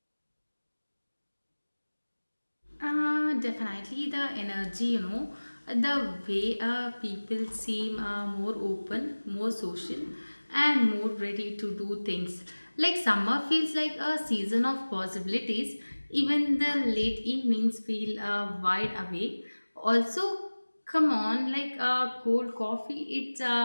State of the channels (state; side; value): inverted; both; correlation -1.00